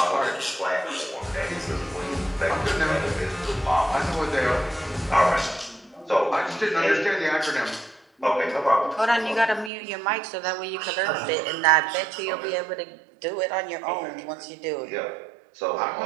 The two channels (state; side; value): drops out; left; at 9.7 s